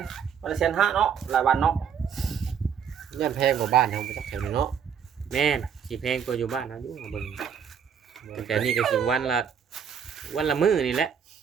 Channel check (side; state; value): left; quieter; 7.6 dB